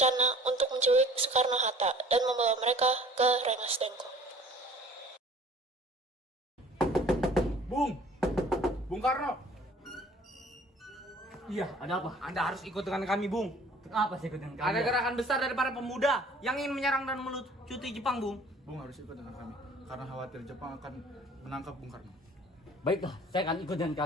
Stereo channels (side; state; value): both; normal; correlation 0.50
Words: untuk menculik Soekarno-Hatta dan membawa mereka ke Rengas Dengklok. Bung Karno, Iya, ada apa? Anda harus ikut dengan kami, Bung. Apa sih ikut dengan Ada kalian? gerakan besar dari para pemuda yang ingin menyerang dan melucuti Jepang, Bung. Bung harus ikut dengan kami karena khawatir Jepang akan menangkap Bung Karno. Baiklah, saya akan ikut dengan